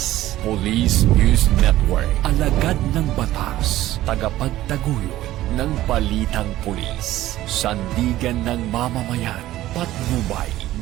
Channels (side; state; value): left; quieter; 15.0 dB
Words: Police News Network, alagad ng batas, tagapagtaguyod ng balitang pulis, sandigan ng mamamayan, patnubay